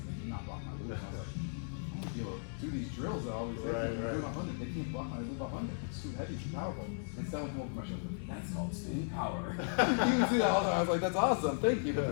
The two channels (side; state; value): right; silent; digital silence